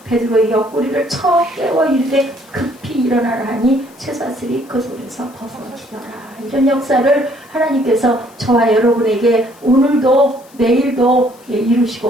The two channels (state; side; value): noise; left; hiss, 27 dB below the sound